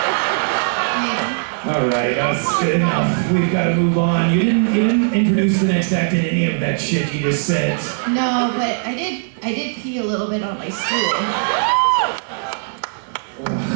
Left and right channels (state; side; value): silent; left; 62 dB below the other